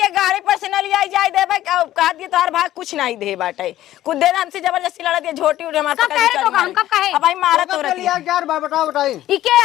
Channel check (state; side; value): quieter; right; 13.9 dB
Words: गाड़ी पर से न लिया जाए दे भाई कहा दिया तोहार भाई कुछ नहीं दे बाटे कुछ दे हमसे जबरदस्ती लड़ा दिया झोटी उठे हमारे कब कहे तो हम कब कहे अब भाई मारा तो रखी लिया यार बताओ बताई ई के